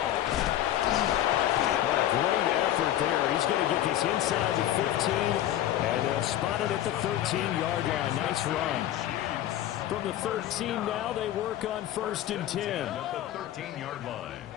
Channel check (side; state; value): right; quieter; 12.6 dB